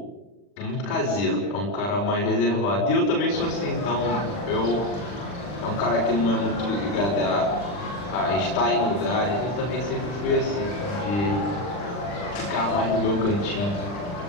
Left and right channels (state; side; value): late; right; 40 ms